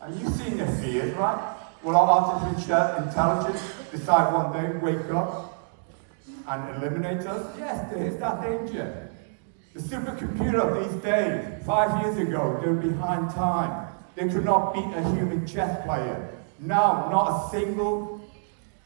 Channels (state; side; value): silent; left; digital silence